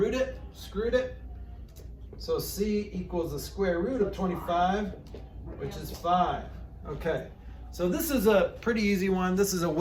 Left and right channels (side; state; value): both; identical; correlation 1.00